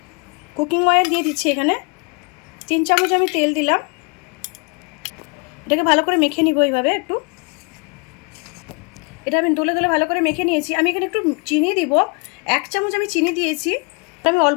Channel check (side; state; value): right; quieter; 33.0 dB